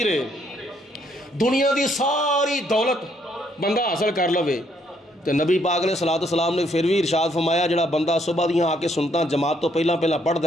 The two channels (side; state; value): both; normal; correlation 0.70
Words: ہے. دنیا دی ساری دولت بندہ حاصل کر لوے, تو نبی پاک علیہ السلام نے پھر بھی ارشاد فرمایا جڑا بندہ صبح دیاں آ کے سنتا جماعت تو پہلا پڑھتا